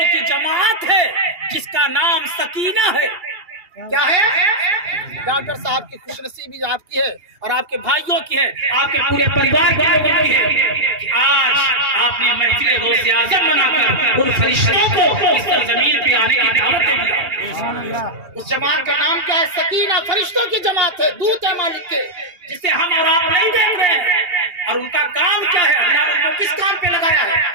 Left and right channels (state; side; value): late; left; 2.8 ms